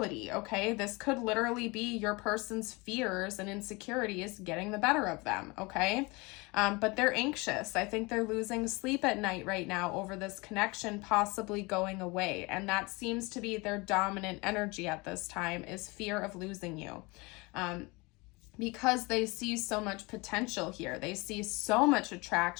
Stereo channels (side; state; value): right; quieter; 25.7 dB